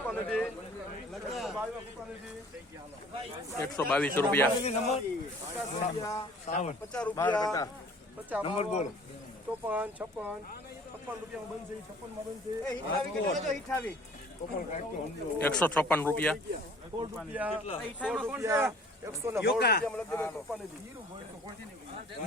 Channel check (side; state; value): both; normal; correlation 0.51